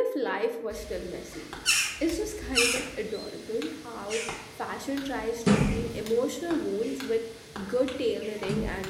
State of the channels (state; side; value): identical; both; correlation 1.00